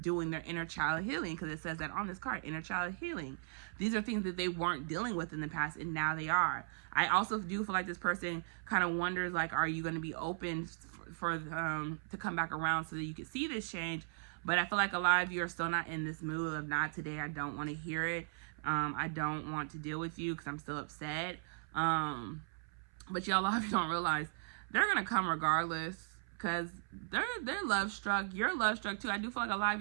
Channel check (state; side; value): silent; left; 53 dB below the other